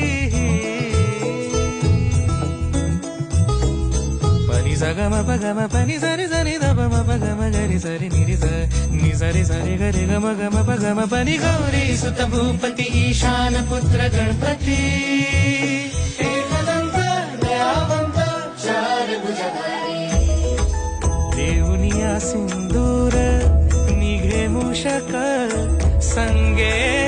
पनी सगम पगम पनी सरी सरी दब पगम गरी सरी निरी नि सरी सरी गरी गम गम पगम पनी गौरी सुत भूपती ईशान पुत्र गणपती एकदंत दयावंत चार भुजधारी देऊनिया सिंदूर निघे मूषक संगे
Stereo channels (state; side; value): identical; both; correlation 1.00